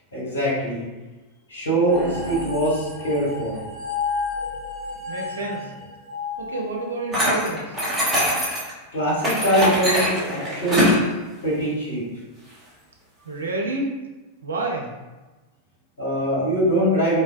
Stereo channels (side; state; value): both; normal; correlation 0.00